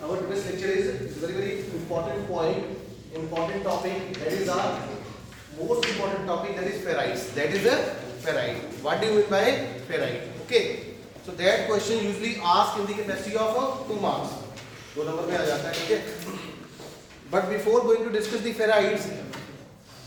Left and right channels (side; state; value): both; identical; correlation 1.00